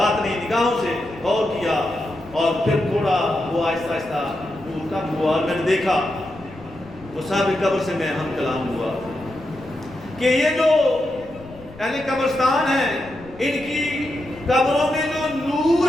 نہیں, نگاہوں سے غور کیا اور پھر تھوڑا وہ آہستہ آہستہ نور کم ہوا اور میں نے دیکھا وہ صاحب قبر سے میں ہم کلام ہوا کہ یہ جو اہل قبرستان ہیں ان کی قبروں میں جو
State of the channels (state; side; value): noise; left; rumble, 21 dB below the sound